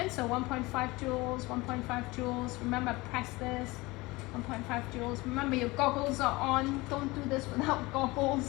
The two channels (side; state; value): right; quieter; 22.1 dB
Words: so 1.5 joules, 1.5 joules, remember press this, 1.5 joules. Remember your goggles are on, don't do this without goggles,